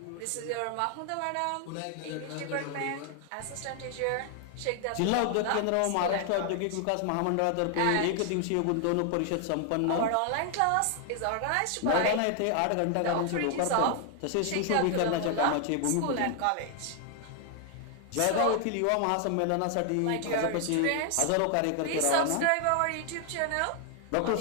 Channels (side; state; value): both; different; correlation 0.00